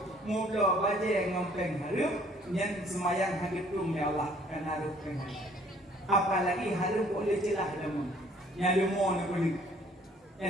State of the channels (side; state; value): both; normal; correlation 0.59